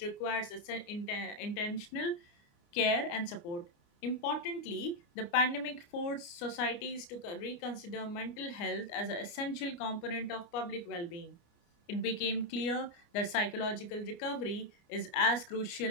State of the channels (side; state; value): right; late; 29 ms